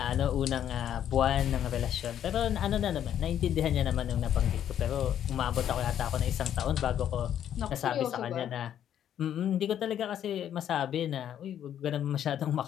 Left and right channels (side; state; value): right; quieter; 10.1 dB